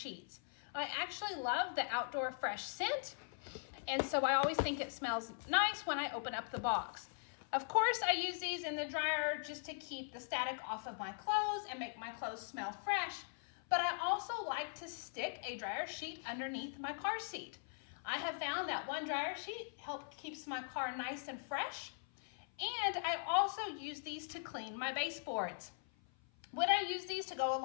I actually love the Outdoor Fresh scent, and so I always think it smells nice when I open up the box. Of course, I use these in the dryer just to keep the static off of my clothes and make my clothes smell fresh, but I also like to stick a dryer sheet underneath my car seat. I have found that one dryer sheet keeps my car nice and fresh, and I also use these to clean my baseboards. When I use these to go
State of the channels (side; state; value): right; silent; 51 dB below the other